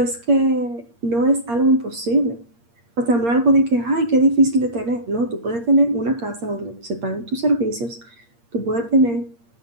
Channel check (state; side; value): late; left; 8.6 ms